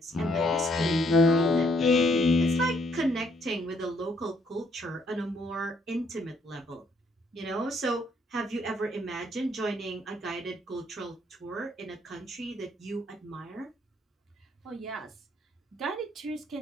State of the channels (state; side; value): normal; both; correlation 0.69